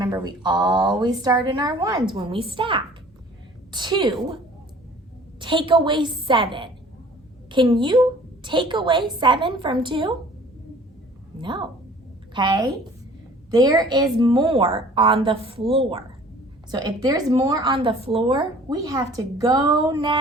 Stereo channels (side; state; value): both; normal; correlation 0.50